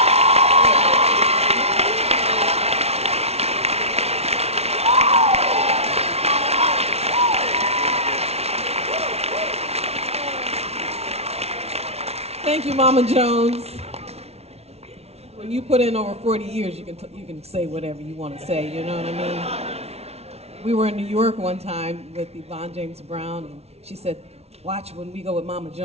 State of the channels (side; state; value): left; late; 0.31 ms